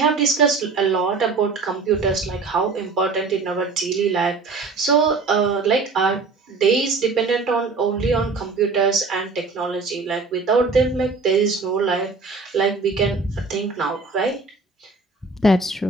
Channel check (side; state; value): left; quieter; 4.1 dB